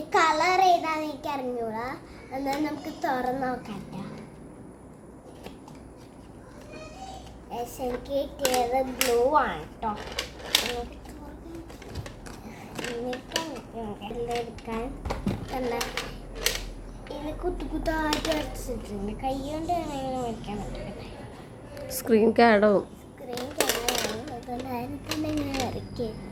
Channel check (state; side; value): identical; both; correlation 1.00